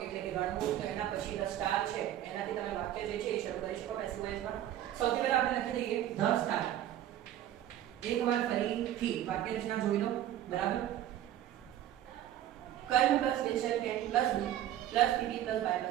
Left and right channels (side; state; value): left; quieter; 12.2 dB